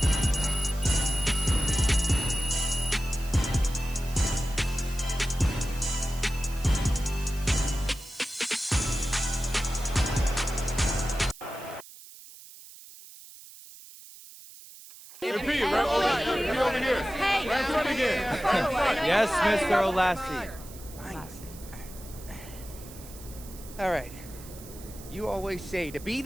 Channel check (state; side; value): noise; right; hiss, 18 dB below the sound